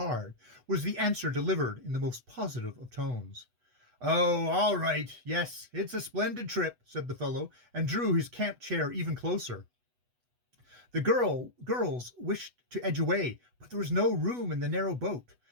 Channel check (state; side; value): late; left; 8.1 ms